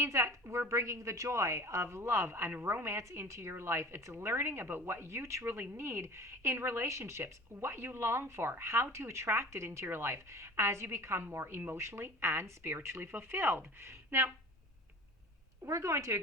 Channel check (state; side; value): normal; both; correlation 0.40